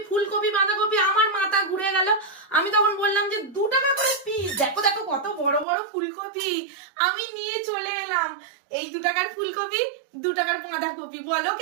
ফুলকপি বাঁধাকপি, আমার মাথা ঘুরে গেল। আমি তখন বললাম যে 2 টাকা করে পিস, দেখো দেখো কত বড় বড় ফুলকপি। আমি নিয়ে চলে এলাম এই 2 টাকার ফুলকপি, 2 টাকার বাঁধাকপি, বলো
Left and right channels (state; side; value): drops out; left; at 5.7 s